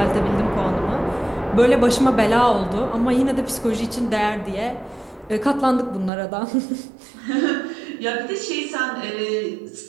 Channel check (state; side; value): drops out; left; at 6.1 s